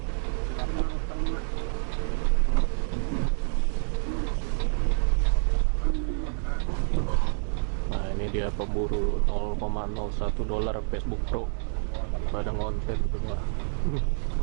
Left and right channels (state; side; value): silent; left; digital silence